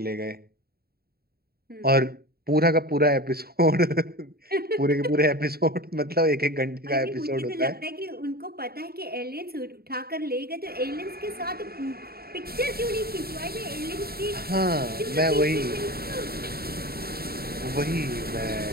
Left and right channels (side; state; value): left; late; 0.45 ms